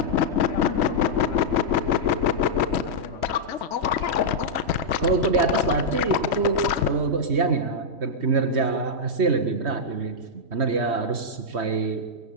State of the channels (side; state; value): left; late; 3.1 ms